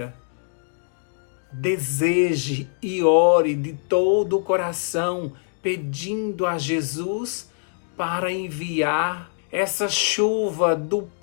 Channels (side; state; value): right; silent; digital silence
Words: Deseje e ore de todo o coração, pedindo a Jesus para enviar essa chuva do